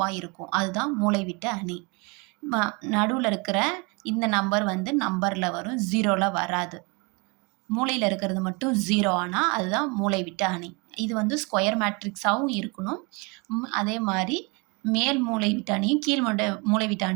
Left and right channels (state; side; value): quieter; left; 29.5 dB